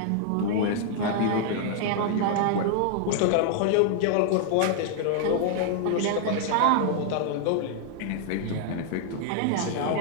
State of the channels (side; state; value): both; different; correlation 0.00